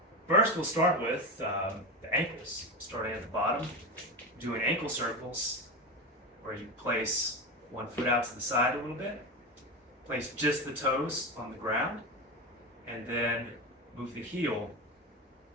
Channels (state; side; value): normal; both; correlation 0.19